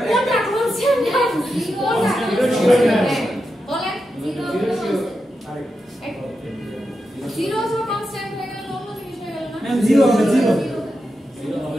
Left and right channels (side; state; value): both; normal; correlation 0.88